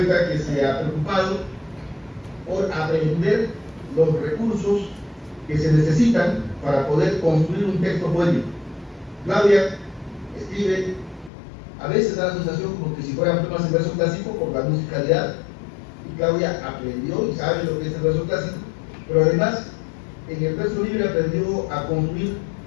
que se ha preocupado por aprender los recursos que se necesitan para poder construir un texto poético. Claudia escribe, a veces da la sensación como que si fueran poemas en verso clásico por la musicalidad, y Claudia aprendió y sabe lo que es el verso clásico, pero además en el verso libre aprendió a construir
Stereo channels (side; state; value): right; drops out; at 11.3 s